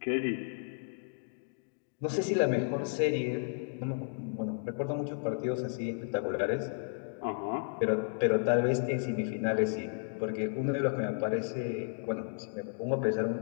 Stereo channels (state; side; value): silent; right; digital silence